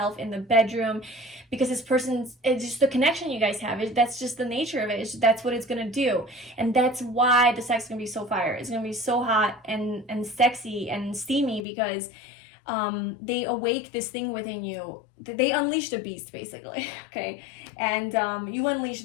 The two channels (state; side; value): drops out; right; at 11.7 s